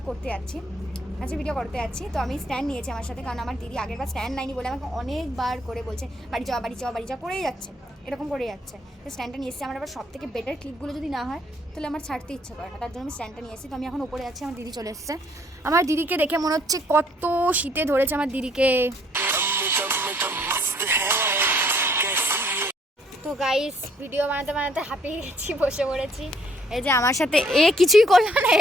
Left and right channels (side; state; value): both; normal; correlation 0.65